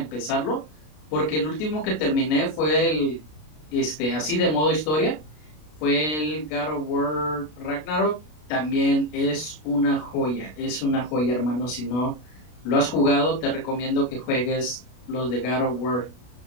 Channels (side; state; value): right; late; 33 ms